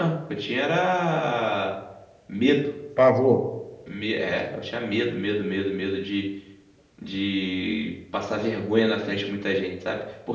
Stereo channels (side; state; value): both; identical; correlation 1.00